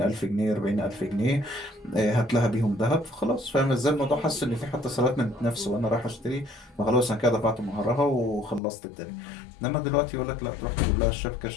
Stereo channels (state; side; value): drops out; right; at 8.6 s